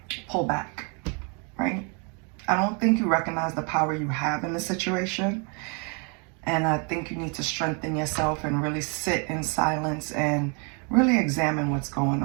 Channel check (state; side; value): quieter; left; 35.8 dB